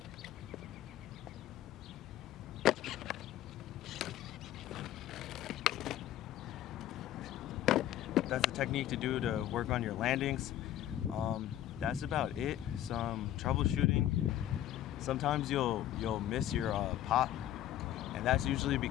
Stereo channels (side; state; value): right; quieter; 12.5 dB